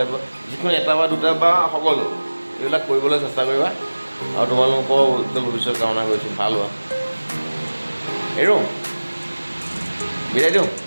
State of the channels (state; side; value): inverted; both; correlation -1.00